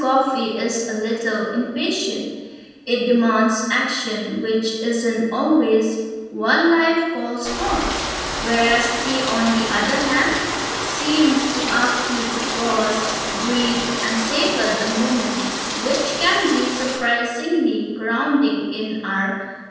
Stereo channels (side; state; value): both; identical; correlation 1.00